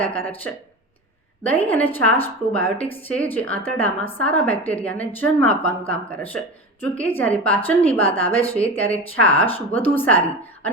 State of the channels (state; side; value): normal; both; correlation 0.27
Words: છે। દહીં અને છાશ પ્રોબાયોટિક્સ છે, જે આંતરડામાં સારા બેક્ટેરિયાને જન્મ આપવાનું કામ કરે છે। જો કે જ્યારે પાચનની વાત આવે છે ત્યારે છાશ વધુ સારી